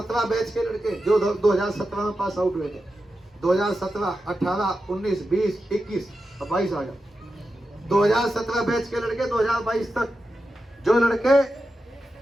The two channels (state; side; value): normal; both; correlation 0.90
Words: बैच के लड़के जो 2017 में पास आउट हुए थे, 2017, 18, 19, 20, 21 और 22 आ गया। 2017 बैच के लड़के 2022 तक जो लड़के